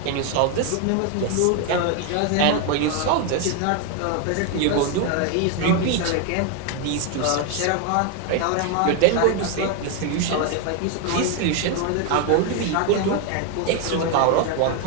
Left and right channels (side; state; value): both; different; correlation 0.01